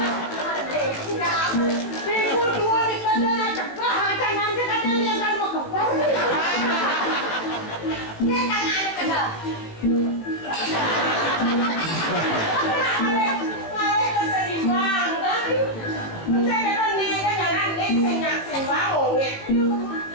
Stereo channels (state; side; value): late; right; 18 ms